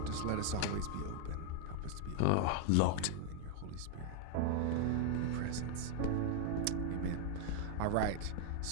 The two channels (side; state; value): both; different; correlation 0.00